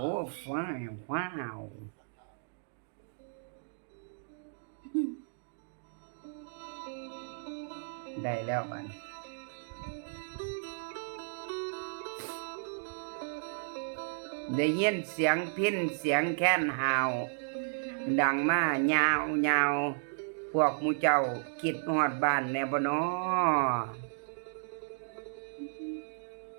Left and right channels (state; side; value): silent; left; digital silence